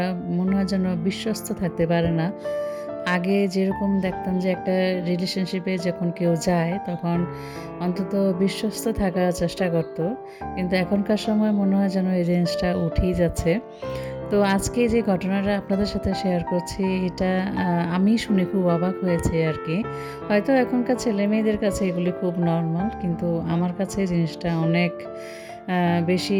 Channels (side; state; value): both; identical; correlation 1.00